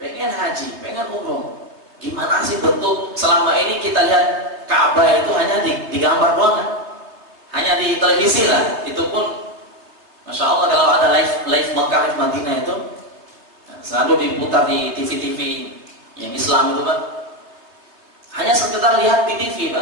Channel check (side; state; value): left; late; 3.3 ms